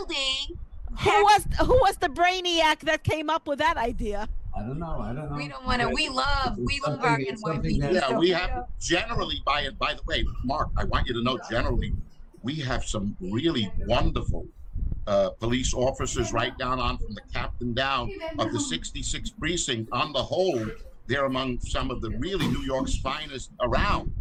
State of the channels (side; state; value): both; identical; correlation 1.00